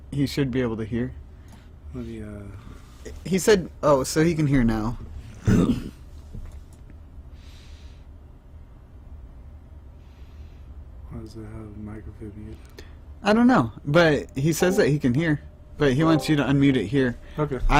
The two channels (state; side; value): identical; both; correlation 1.00